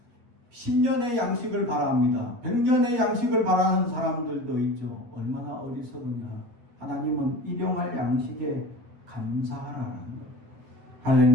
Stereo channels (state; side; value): late; left; 8.7 ms